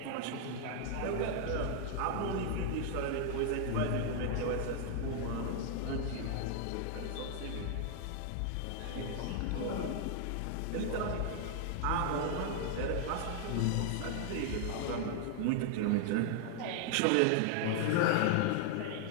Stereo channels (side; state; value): both; different; correlation 0.00